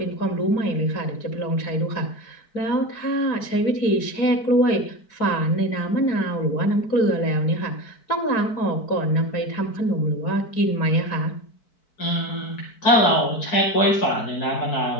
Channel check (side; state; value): right; late; 4.6 ms